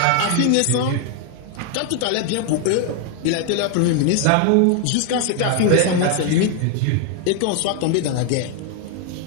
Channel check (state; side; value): different; both; correlation 0.00